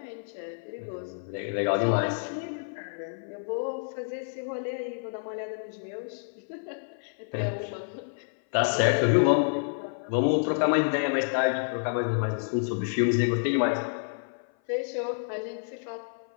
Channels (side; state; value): right; silent; 56 dB below the other